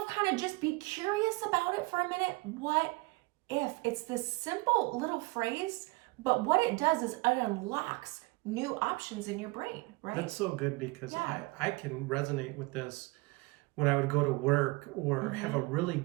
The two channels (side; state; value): left; quieter; 24.5 dB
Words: kind of just be curious about it for a minute. What if? It's this simple little phrase, but what it does is it unlocks new options in your brain, right? That's so good because I can resonate with this. When I would go to work or have a really